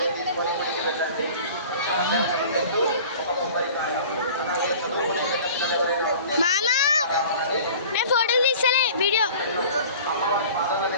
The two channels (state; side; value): inverted; both; correlation -0.43